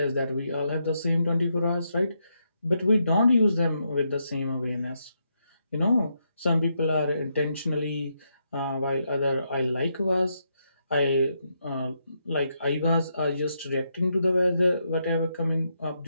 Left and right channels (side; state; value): both; inverted; correlation -0.81